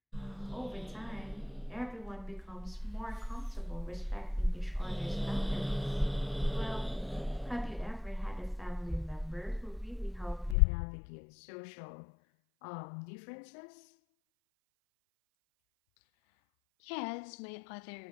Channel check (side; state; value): right; drops out; at 10.6 s